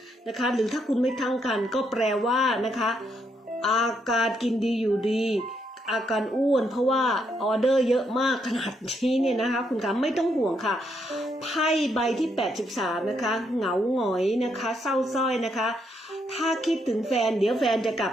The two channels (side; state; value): both; normal; correlation 0.76